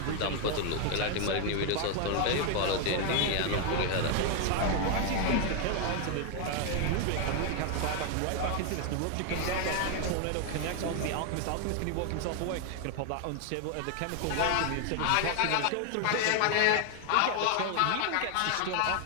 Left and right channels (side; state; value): both; different; correlation 0.00